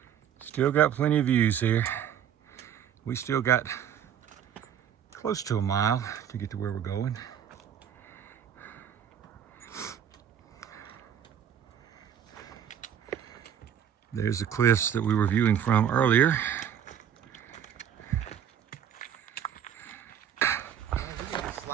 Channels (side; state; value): left; quieter; 9.1 dB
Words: Still got plenty of views here. We still got close to a mile to get to where we're going. There's the cliffs that we were viewing from earlier.